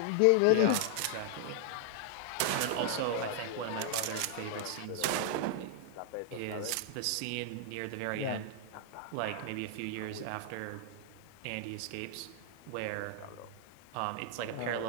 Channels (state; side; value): different; both; correlation 0.00